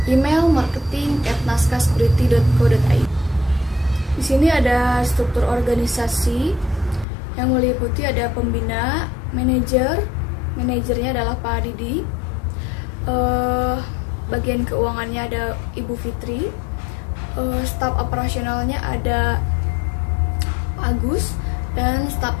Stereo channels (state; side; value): drops out; right; at 7.1 s